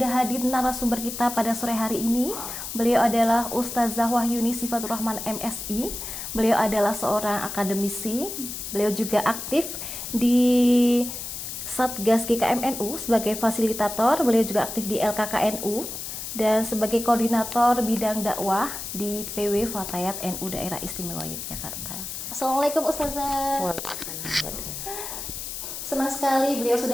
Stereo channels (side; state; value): left; noise; hiss, 7 dB below the sound